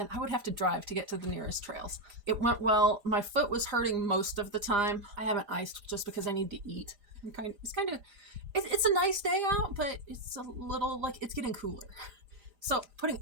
I would have to drive to get to the nearest trails. It went well. My foot was hurting most of the time. I haven't iced just because I need to eat. It's a nice day out, but it's a little like it's getting cooler. So putting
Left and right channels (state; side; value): late; left; 4.9 ms